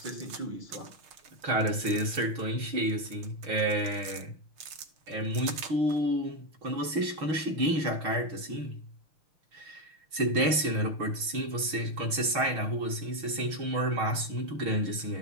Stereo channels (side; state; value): left; late; 6.3 ms